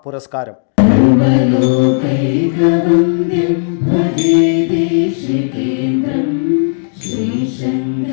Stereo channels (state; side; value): silent; right; digital silence